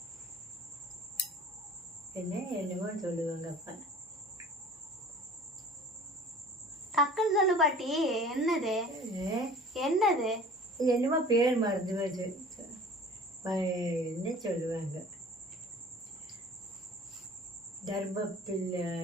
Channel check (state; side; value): normal; both; correlation 0.46